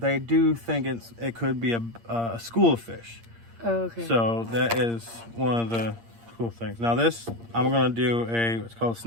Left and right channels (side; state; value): left; late; 8.7 ms